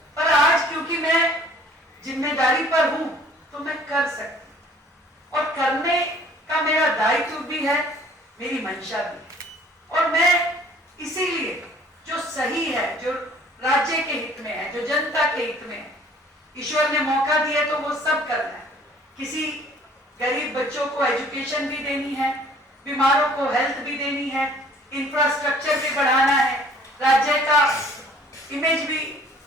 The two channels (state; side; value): normal; both; correlation 0.55